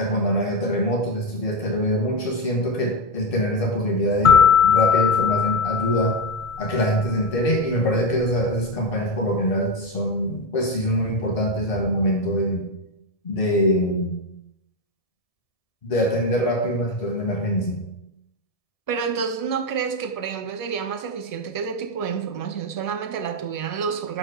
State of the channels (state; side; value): late; right; 1.7 ms